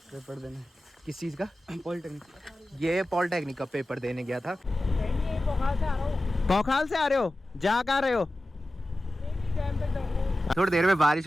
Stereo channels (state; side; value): normal; both; correlation 0.95